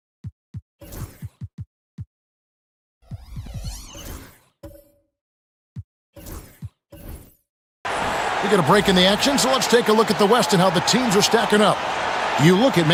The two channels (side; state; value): both; identical; correlation 1.00